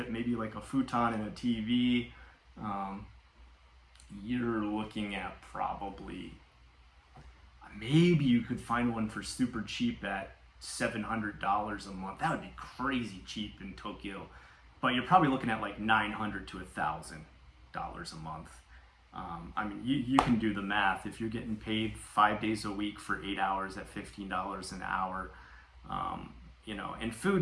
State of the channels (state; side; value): identical; both; correlation 1.00